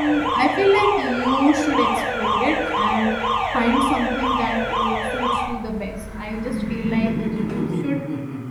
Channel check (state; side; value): identical; both; correlation 1.00